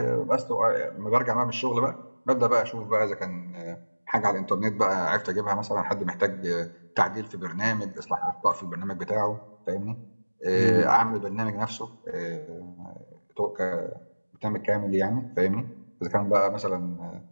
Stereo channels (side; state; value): both; inverted; correlation -1.00